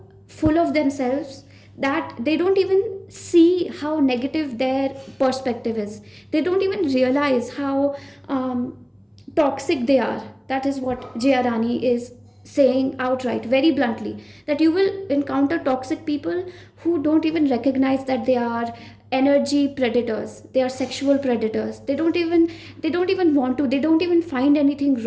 full of themselves that they don't even see how negative their perspective is. They don't even realize how toxic they are. That is what Jayarani is saying outright, very bluntly, that you will encounter toxic people who don't even recognize that they are energy predators, they are sexual predators. They don't even want to, they don't even find anything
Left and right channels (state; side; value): identical; both; correlation 1.00